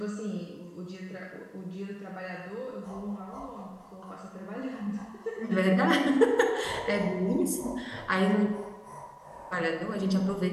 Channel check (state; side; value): identical; both; correlation 1.00